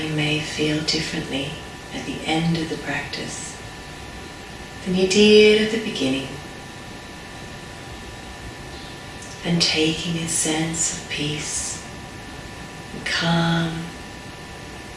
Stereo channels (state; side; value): identical; both; correlation 1.00